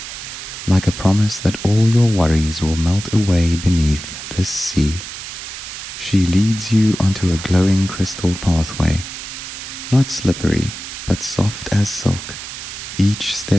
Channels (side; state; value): right; noise; hiss, 10 dB below the sound